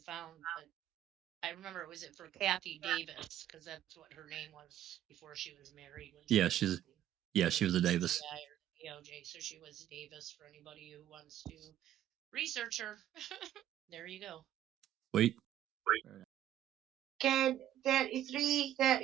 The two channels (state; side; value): quieter; left; 11.9 dB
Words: found, but I remember was it for Kathy Davis, because that's what her name was before she was married. She was a Davis. DOJ, so she was Davis for anybody who wants to research her. There you go. Wait. Ken